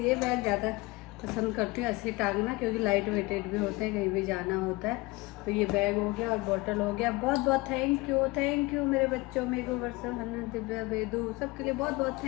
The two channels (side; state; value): right; quieter; 22.7 dB